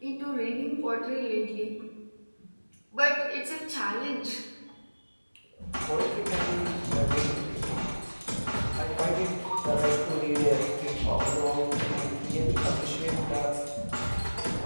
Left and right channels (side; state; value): both; inverted; correlation -1.00